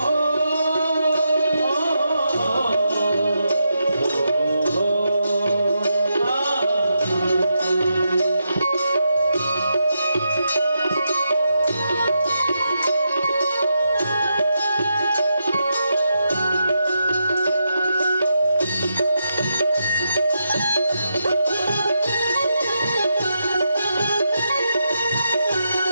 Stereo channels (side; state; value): both; inverted; correlation -0.84